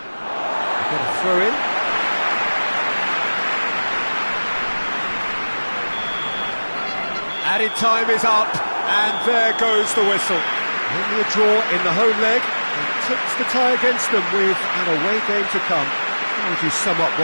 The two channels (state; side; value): inverted; both; correlation -1.00